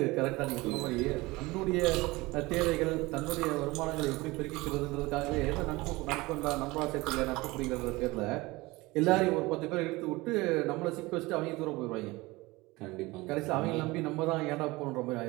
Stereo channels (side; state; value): left; quieter; 21.7 dB